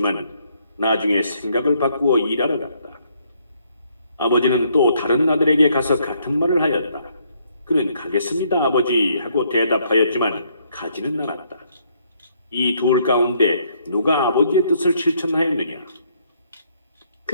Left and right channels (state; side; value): inverted; both; correlation -0.69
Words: 나중에 생각을 바꾸어 일하러 갔다. 아버지는 또 다른 아들에게 가서 같은 말을 하였다. 그는 가겠습니다, 아버지 하고 대답하였지만 가지는 않았다. 이 둘 가운데 누가 아버지의 뜻을 실천하였느냐?